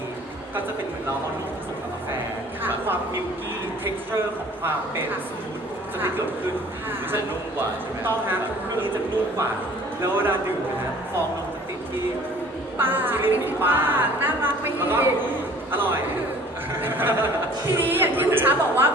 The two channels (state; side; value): normal; both; correlation 0.51